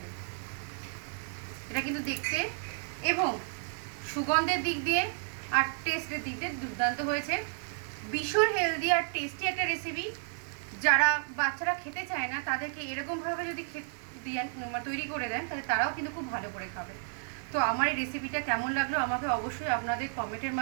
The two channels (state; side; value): silent; left; 56 dB below the other